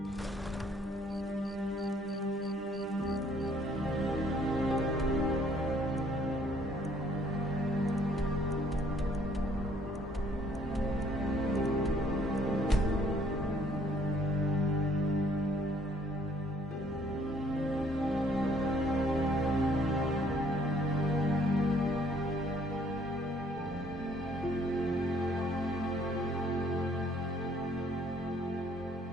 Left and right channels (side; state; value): both; normal; correlation 0.62